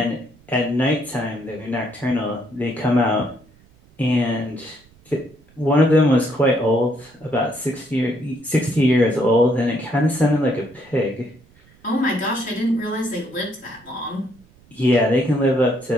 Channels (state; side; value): noise; right; rumble, 29 dB below the sound